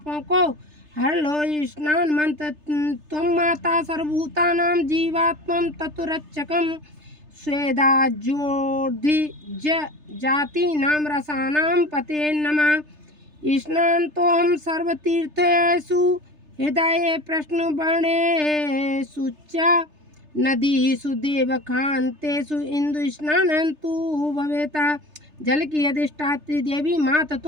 को हर लो। स्नान मंत्र, त्वं माता सर्वभूतानां जीवात्मं तत्रक्षकं स्वेदा ज्योति जाति नाम रसानां पते नमः। स्नान तो हम सर्वतीर्थेषु हृदय प्रश्न बणे सुच्चा नदी सुदेव खान्तेषु इंदु स्नानंतु भवेता। जल की अधिष्ठात्री देवी माता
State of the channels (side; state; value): left; late; 3.3 ms